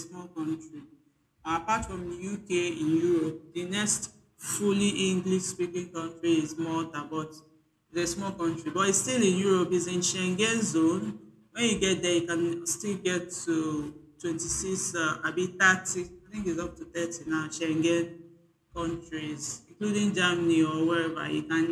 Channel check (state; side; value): identical; both; correlation 1.00